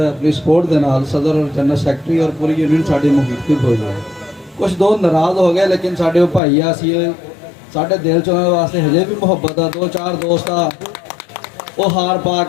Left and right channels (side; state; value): right; drops out; at 6.4 s